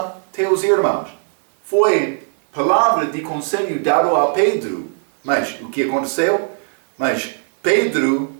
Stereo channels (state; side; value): silent; left; digital silence